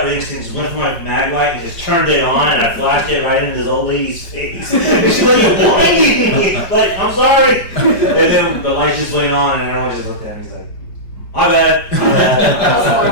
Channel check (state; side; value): late; right; 5.0 ms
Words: instinct went for my mag light and just turned it on, and I flashed it right into this old lady's face. And she's like, "You're blinding me!" Like, I'm sorry. And then the light just went on, and everyone just looked at me. He's like, "My bad, my bad."